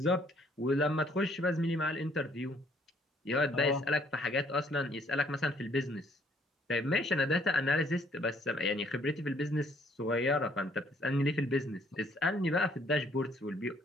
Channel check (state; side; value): normal; both; correlation 0.64